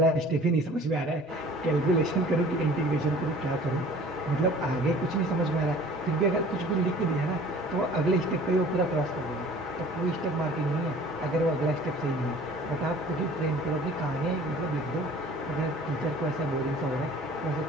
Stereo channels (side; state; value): both; normal; correlation 0.48